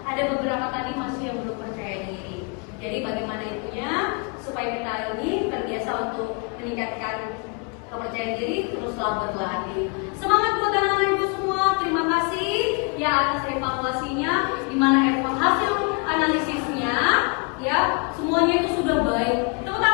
Ada beberapa tadi masih yang belum percaya diri. Jadi bagaimana itunya supaya kita ini terbiasa untuk meningkatkan kepercayaan diri, teruslah berlatih. Semangat buat anak-anak ibu semua. Terima kasih ya atas evaluasinya, di mana hasil analisisnya ya semuanya itu sudah baik. Tepuk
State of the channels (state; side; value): quieter; right; 33.5 dB